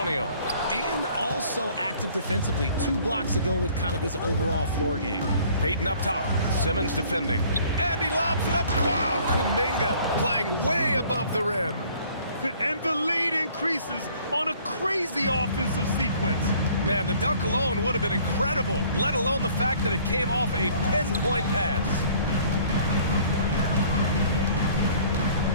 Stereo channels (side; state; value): both; inverted; correlation -0.55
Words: And also active defensively. 2 blocks ago with kind of his overall floor game. Payton up top. Simmons defending. And he lobs it up. Wow, Kuminga playing way above the rim. And the lead increases on a crazy offensive sequence. Man, the dunk alone would have been incredible, let alone the fact that it came off a pinpoint pass.